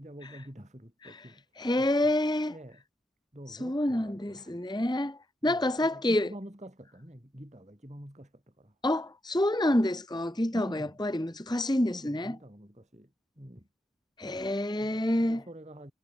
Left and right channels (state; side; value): normal; both; correlation 0.83